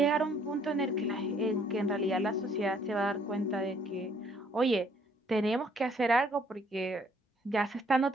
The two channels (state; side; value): normal; both; correlation 0.64